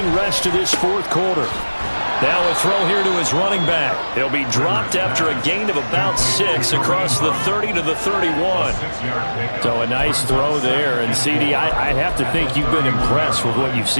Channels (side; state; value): both; inverted; correlation -1.00